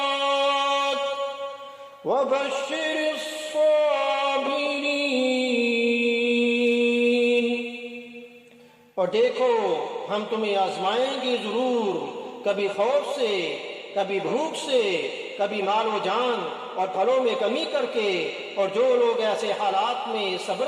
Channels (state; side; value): identical; both; correlation 1.00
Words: वबश्शिरिस साबिरीन। और देखो, हम तुम्हें आजमाएंगे जरूर, कभी खौफ से, कभी भूख से, कभी मालो जान और फलों में कमी करके। और जो लोग ऐसे हालात में सब्र